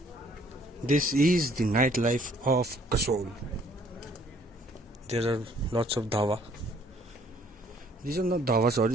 This is the nightlife of Kasol. There are lots of dhawa. These are not dhawa,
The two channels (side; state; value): both; normal; correlation 0.61